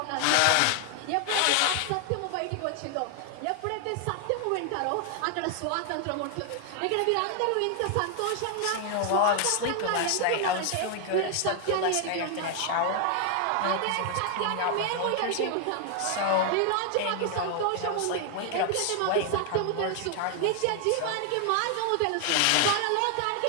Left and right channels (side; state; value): both; different; correlation 0.00